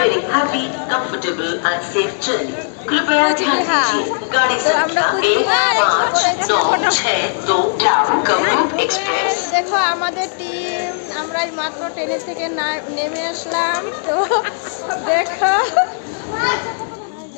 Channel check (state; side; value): silent; right; digital silence